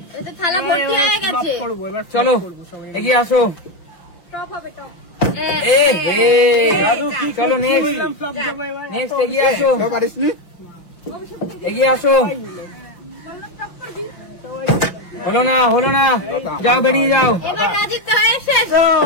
এটা থালা ভর্তি হয়ে গেছে। চলো এগিয়ে আসো। টপ হবে টপ। এ হে চলো নেক্সট এগিয়ে আসো, এগিয়ে আসো। হলো না, যাও বেরিয়ে যাও। এবার রাজিত তো হয়ে শেষ।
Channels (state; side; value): late; right; 5.8 ms